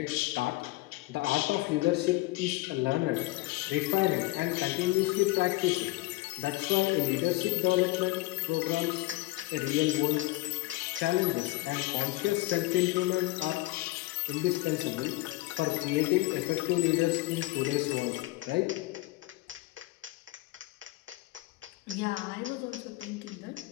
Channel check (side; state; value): right; quieter; 19.9 dB